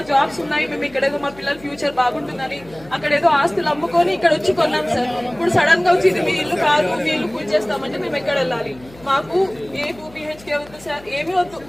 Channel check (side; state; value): left; noise; hum, 22 dB below the sound